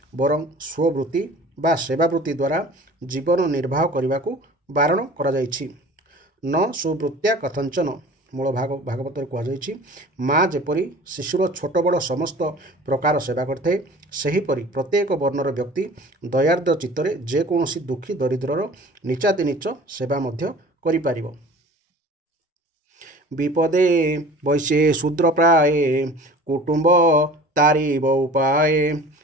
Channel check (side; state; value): both; normal; correlation 0.44